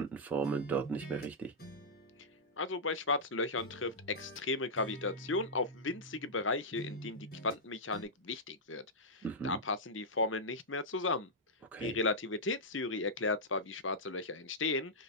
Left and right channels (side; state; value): both; normal; correlation -0.09